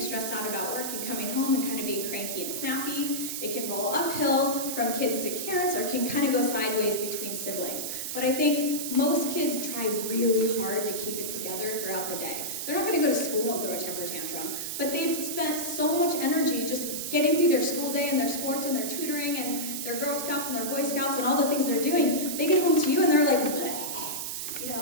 stressed out about work and coming home and kind of being cranky and snappy. It can roll uphill from kids to parents, or it can kind of go sideways between siblings. But I think most kids try really hard to keep it together throughout the day. They're not going to go to school and throw a temper tantrum, but they've spent so much energy just getting through their school day and their sports and their tutoring and their Girl Scouts and their Boy Scouts and all the things they're doing. They get home to you and they're like,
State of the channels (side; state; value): right; noise; hiss, 4 dB below the sound